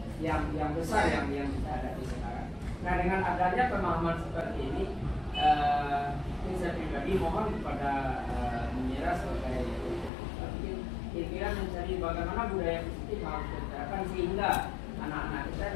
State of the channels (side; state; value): right; drops out; at 10.1 s